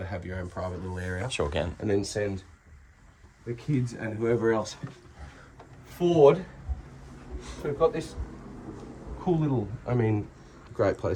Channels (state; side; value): identical; both; correlation 1.00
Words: of have your own private little area. Sure can. And then send the kids and whoever else forward. So we've got this cool little, great